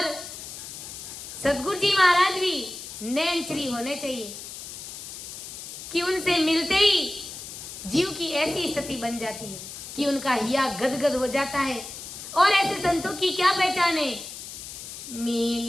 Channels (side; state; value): left; noise; hiss, 11 dB below the sound